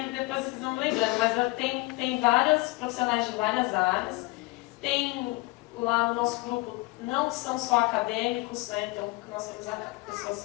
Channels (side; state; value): right; quieter; 23.2 dB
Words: depois vocês vão me lembrando. Mas tem vários profissionais de várias áreas. Tem lá no nosso grupo, não são só acadêmicos, né? Então nós temos